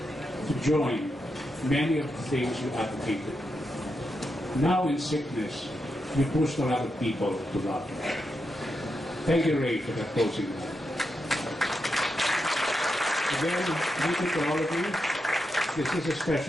to join many of the things you advocated. Now in sickness, you pushed a lot of people to love. Thank you, Ray, for that closing. Again, thank you to all of you. This is a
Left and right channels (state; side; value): normal; both; correlation 0.85